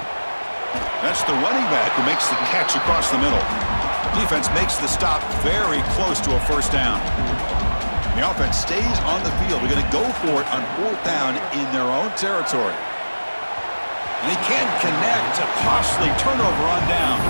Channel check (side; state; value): both; inverted; correlation -1.00